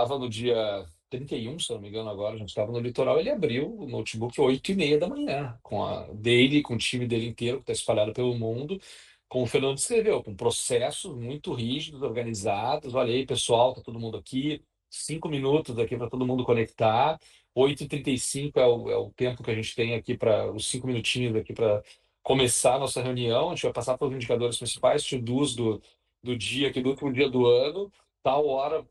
no dia 31, se eu não me engano, agora, a gente estava no litoral. Ele abriu o notebook 8h30 da manhã, com o time dele inteiro, que está espalhado pelo mundo, como o Fernando descreveu, com processos muito rígidos, organizados. Olha aí, pessoal, tá todo mundo aqui, 5 minutos aqui para todo mundo conectar. 8h35 é o tempo que a gente tem aqui, para os 5 minutinhos aqui para começar a nossa reunião. A gente vai passar pelos indicadores principais, to-dos do dia, aqui do último dia do ano. Tal hora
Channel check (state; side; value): identical; both; correlation 1.00